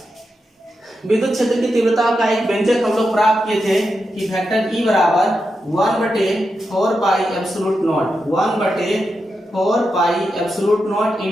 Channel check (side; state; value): both; normal; correlation 0.87